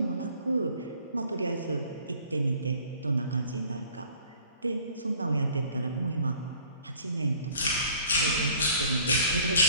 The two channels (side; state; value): both; inverted; correlation -0.53